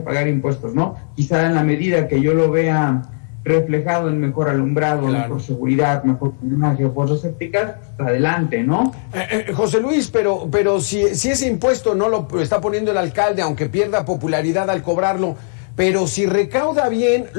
pagar impuestos, ¿no? Quizá en la medida que yo lo vea reflejado en mejor alumbrado, claro, mejor seguridad, mejor imagen, fosas sépticas, pues adelante, ¿no? José Luis, pero si ese impuesto no lo está poniendo el alcalde, aunque pierda popularidad al cobrarlo, pero si recauda bien,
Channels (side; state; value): right; silent; 58 dB below the other